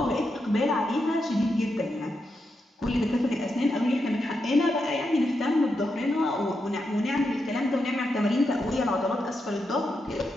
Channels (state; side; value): normal; both; correlation 0.85